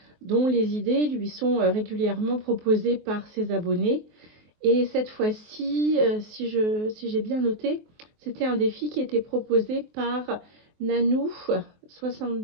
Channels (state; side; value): late; left; 23 ms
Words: dont les idées lui sont régulièrement proposées par ses abonnés. Et cette fois-ci, si j'ai bien noté, c'était un défi qui était proposé par Nanou